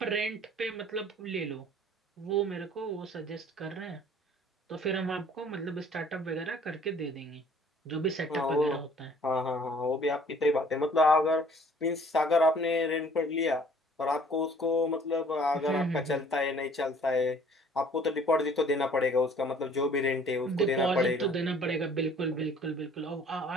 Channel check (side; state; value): both; normal; correlation 0.55